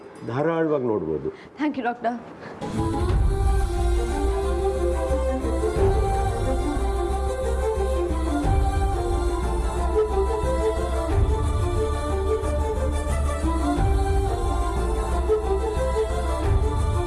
ಧಾರಾಳವಾಗಿ ನೋಡ್ಬೋದು. Thank you doctor.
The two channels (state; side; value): identical; both; correlation 1.00